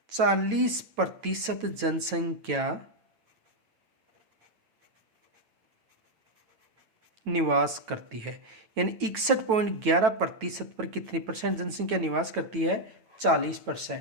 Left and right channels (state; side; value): late; left; 9.1 ms